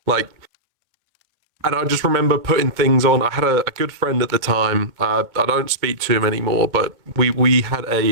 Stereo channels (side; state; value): left; late; 2.1 ms